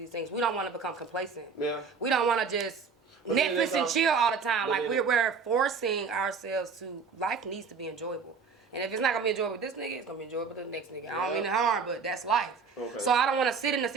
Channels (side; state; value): left; quieter; 5.3 dB